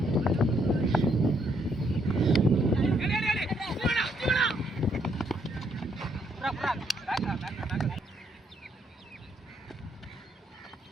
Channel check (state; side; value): normal; both; correlation 0.72